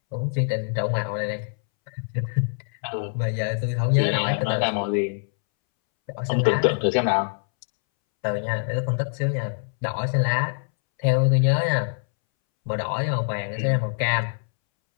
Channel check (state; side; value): silent; right; 62 dB below the other